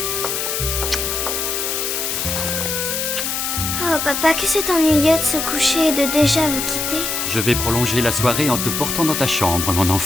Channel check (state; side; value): noise; left; hiss, 1 dB below the sound